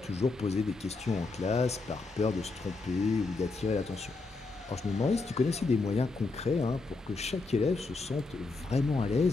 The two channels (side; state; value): right; quieter; 3.7 dB